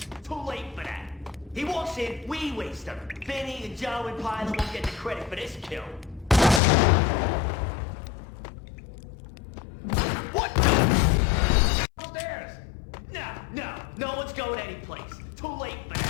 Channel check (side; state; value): right; drops out; at 6.6 s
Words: Too late for that. He walks in, we waste him. Vinny and Joe and Pilot won't get the credit for this kill. What the? Upstairs! No one's going anyplace. Too late for